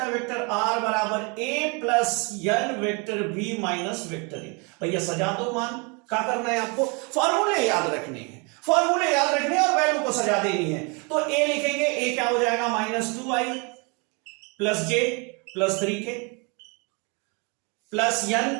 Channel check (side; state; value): left; quieter; 32.0 dB